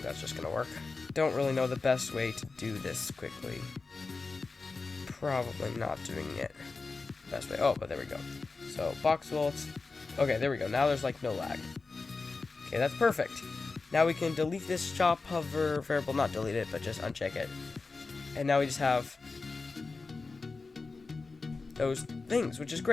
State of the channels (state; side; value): quieter; right; 4.0 dB